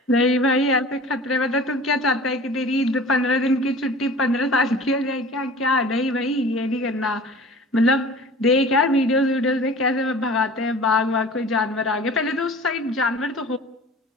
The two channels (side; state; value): both; normal; correlation 0.41